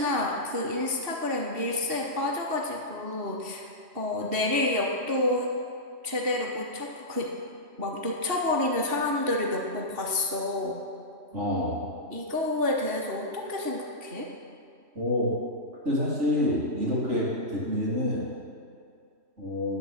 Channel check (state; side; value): late; left; 3.1 ms